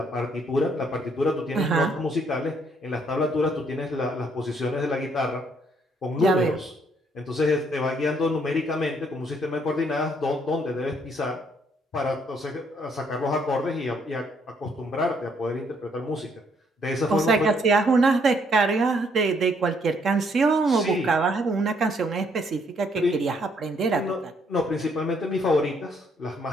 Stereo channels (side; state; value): both; normal; correlation 0.69